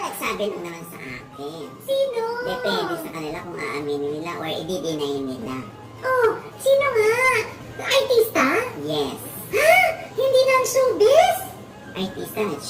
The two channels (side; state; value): both; identical; correlation 1.00